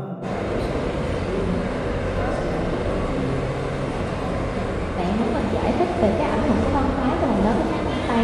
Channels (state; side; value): identical; both; correlation 1.00